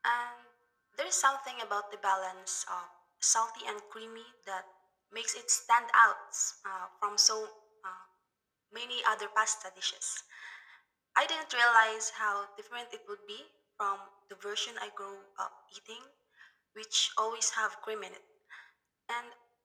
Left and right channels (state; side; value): identical; both; correlation 1.00